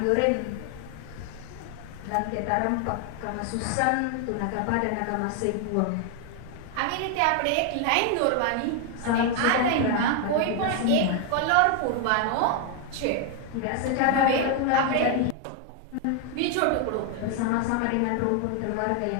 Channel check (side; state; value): both; different; correlation 0.01